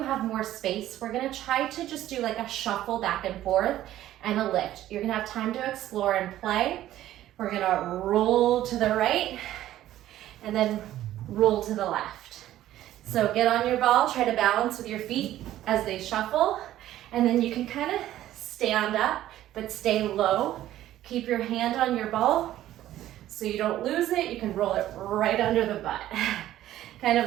have more space. We're gonna try to just do like a shuffle back and forth and a lift. You're gonna have time to explore and play. We're gonna roll to the right and then roll to the left. So get on your ball, try to balance with your feet as they shuffle, and then you can kind of stand up but stay low. Keep your hand on your ball so you don't lose it. You can roll it right under the butt. Kind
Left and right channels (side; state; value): left; quieter; 13.4 dB